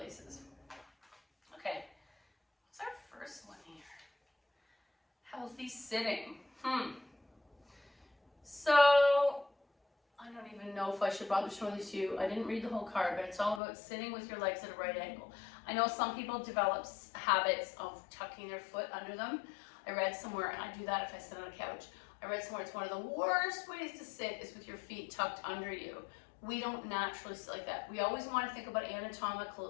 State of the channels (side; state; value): right; drops out; at 13.6 s